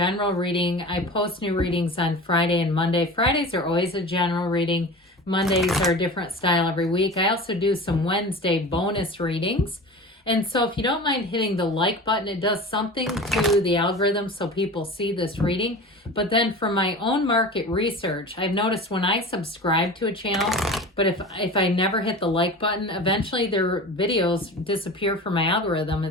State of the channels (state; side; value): normal; both; correlation 0.34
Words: reading. I post new readings on Friday and Monday. Fridays are always a general reading. Mondays are a different style every week. I also do some Wednesday bonus readings. And so if you don't mind hitting the like button, it does something to the algorithm so people see this reading. But then for my own market research, I've noticed when I subscribe to a channel, but if I never hit the like button, eventually their videos disappear from my algorithm.